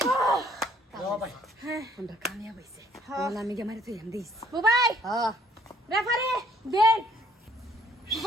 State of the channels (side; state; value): both; normal; correlation 0.62